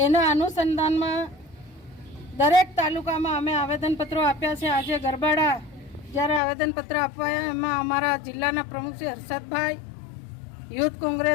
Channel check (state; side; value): drops out; right; at 6.4 s